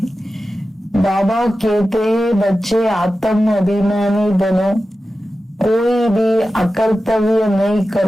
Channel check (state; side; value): normal; both; correlation 0.93